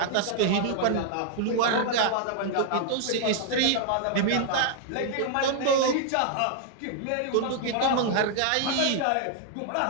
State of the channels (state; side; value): different; both; correlation 0.00